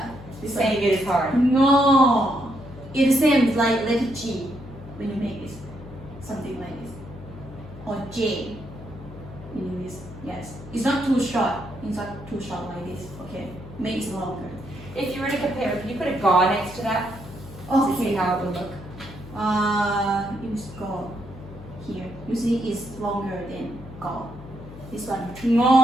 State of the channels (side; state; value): left; noise; hum, 15 dB below the sound